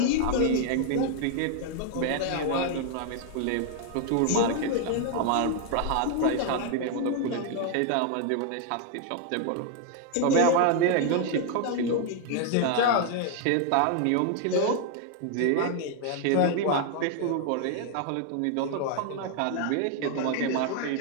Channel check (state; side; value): different; both; correlation 0.00